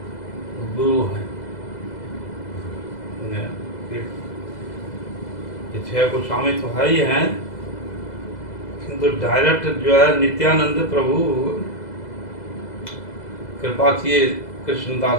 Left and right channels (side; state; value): right; late; 2.0 ms